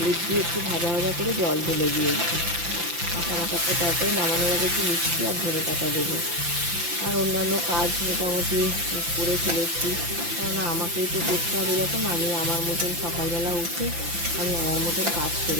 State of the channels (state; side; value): late; left; 5.8 ms